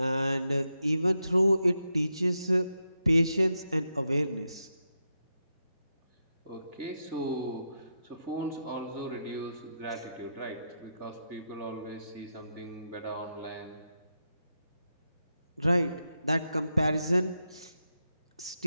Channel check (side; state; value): both; inverted; correlation -0.85